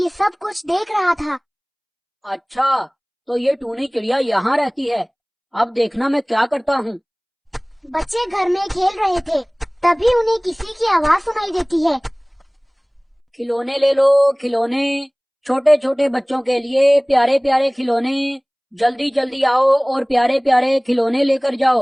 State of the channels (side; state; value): both; identical; correlation 1.00